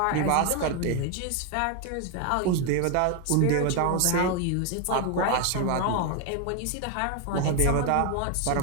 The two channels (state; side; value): different; both; correlation 0.01